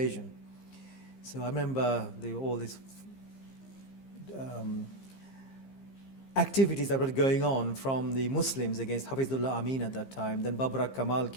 So I remember all these activities that were going on from the Muslims against Hafizullah Amin at that time. Then Babrak Kamal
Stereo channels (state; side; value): late; right; 15 ms